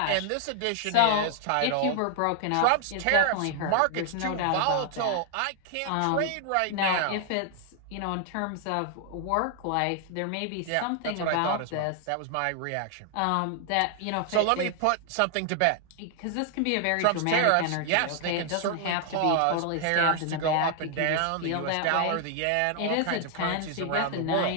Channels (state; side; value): different; both; correlation 0.00